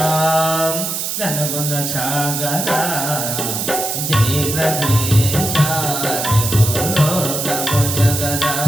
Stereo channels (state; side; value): noise; right; hiss, 3 dB below the sound